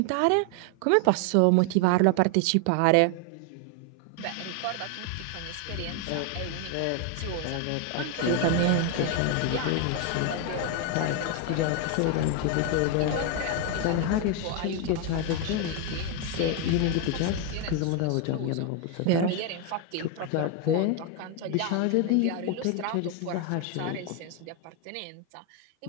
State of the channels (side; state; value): both; different; correlation 0.01